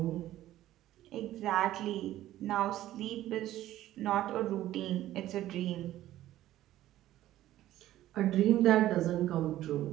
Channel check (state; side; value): quieter; left; 14.0 dB